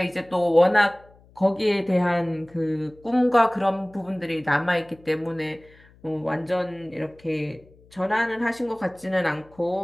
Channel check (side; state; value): left; noise; hum, 27 dB below the sound